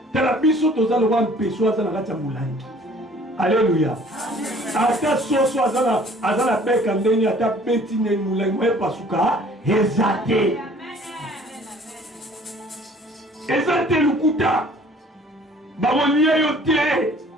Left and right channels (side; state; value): both; normal; correlation 0.54